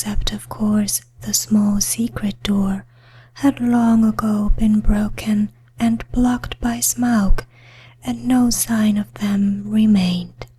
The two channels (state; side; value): identical; both; correlation 1.00